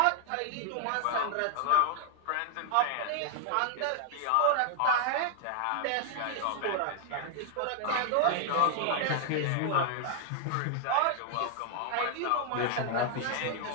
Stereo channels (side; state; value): both; different; correlation 0.00